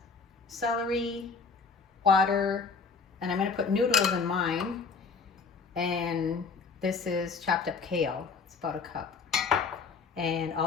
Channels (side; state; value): right; quieter; 5.0 dB